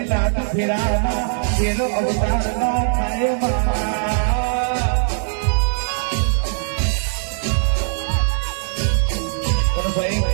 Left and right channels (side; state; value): left; silent; digital silence